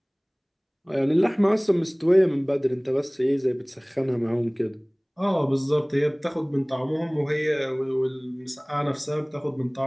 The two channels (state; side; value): identical; both; correlation 1.00